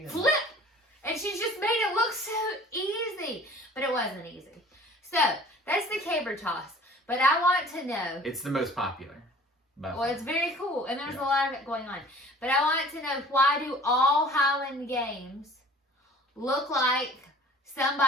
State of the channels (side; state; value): both; normal; correlation 0.48